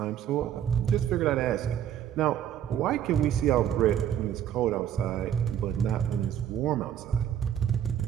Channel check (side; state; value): left; quieter; 10.0 dB